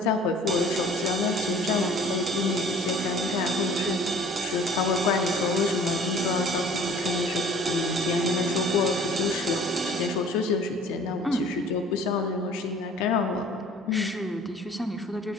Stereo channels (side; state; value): both; normal; correlation 0.50